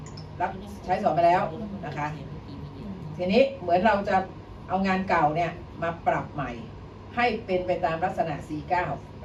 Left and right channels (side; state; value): both; identical; correlation 1.00